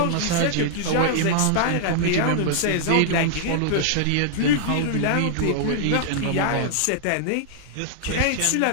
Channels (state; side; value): different; both; correlation -0.01